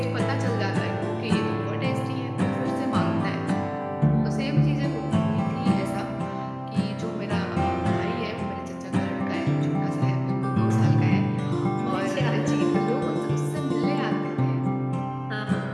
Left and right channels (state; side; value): identical; both; correlation 1.00